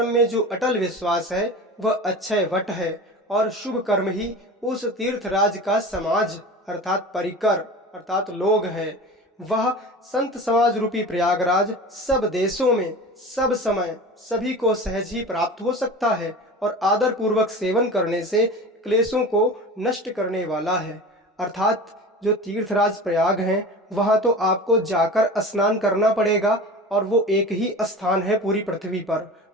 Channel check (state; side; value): normal; both; correlation 0.34